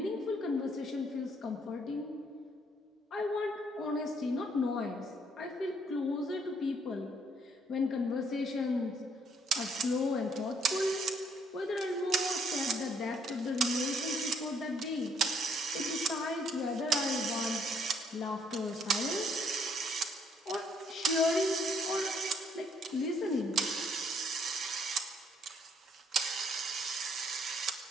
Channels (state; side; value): normal; both; correlation 0.67